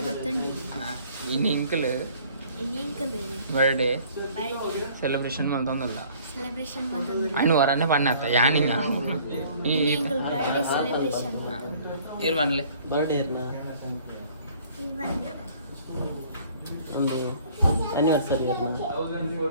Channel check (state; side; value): inverted; both; correlation -0.55